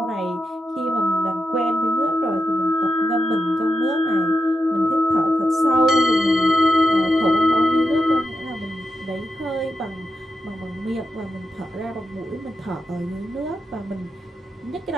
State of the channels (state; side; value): normal; both; correlation 0.87